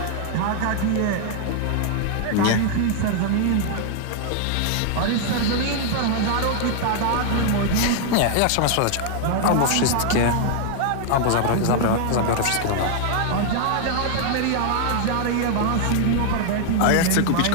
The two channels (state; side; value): different; both; correlation 0.00